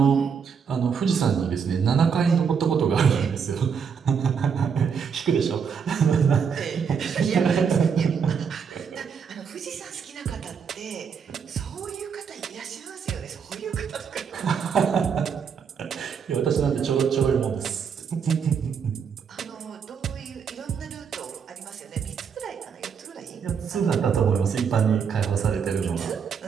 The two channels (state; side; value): quieter; left; 6.6 dB